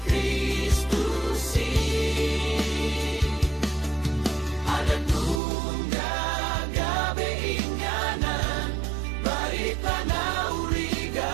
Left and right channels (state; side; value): drops out; left; at 5.4 s